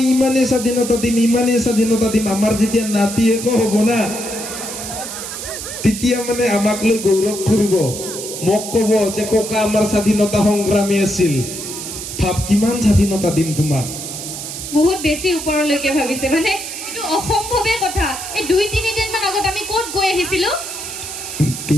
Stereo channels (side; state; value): right; noise; hiss, 8 dB below the sound